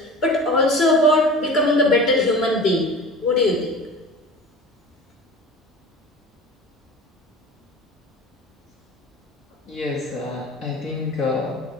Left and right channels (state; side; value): normal; both; correlation 0.37